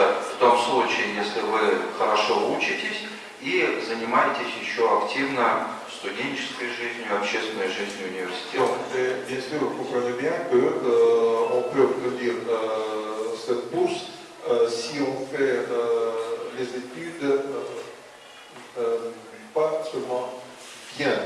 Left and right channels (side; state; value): both; identical; correlation 1.00